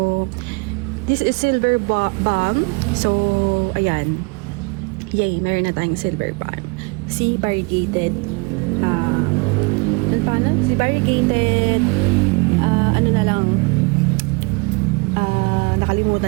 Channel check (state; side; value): quieter; left; 30.0 dB